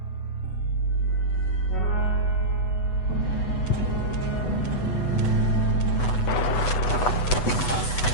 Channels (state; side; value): late; right; 8.1 ms